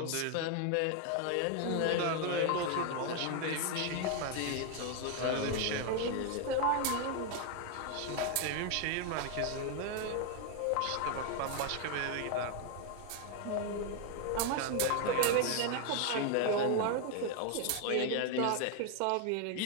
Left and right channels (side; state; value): both; different; correlation 0.01